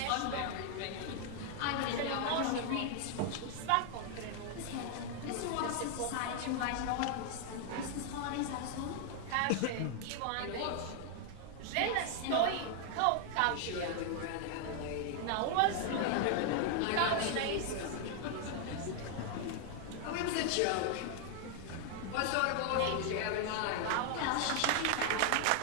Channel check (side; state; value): both; different; correlation 0.00